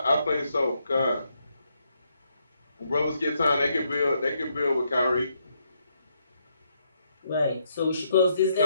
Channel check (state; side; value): inverted; both; correlation -0.77